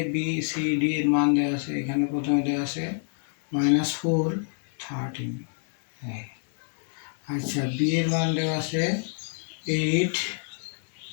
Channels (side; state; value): right; silent; digital silence